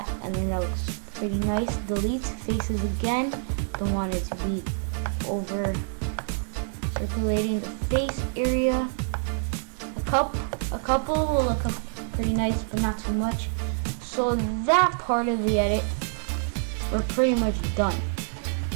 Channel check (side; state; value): left; silent; 56 dB below the other